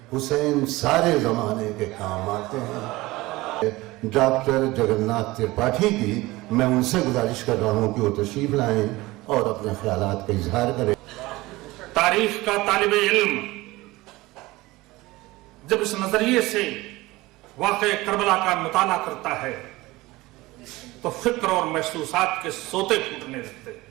حسین سارے زمانے کے کام آتے ہیں۔ ڈاکٹر جگناتھ ترپاٹھی کی میں ان سے گزارش کر رہا ہوں کہ وہ تشریف لائیں اور اپنے خیالات کا اظہار کریں۔ تاریخ کا طالب علم جب اس نظریے سے واقع کربلا کا مطالعہ کرتا ہے تو فکر اور محسوسات کے سوتے پھوٹنے لگتے ہیں۔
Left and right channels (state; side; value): quieter; left; 19.9 dB